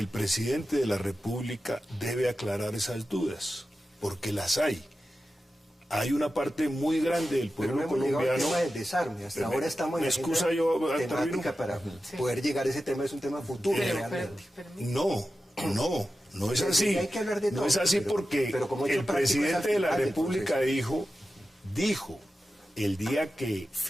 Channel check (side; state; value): both; normal; correlation 0.93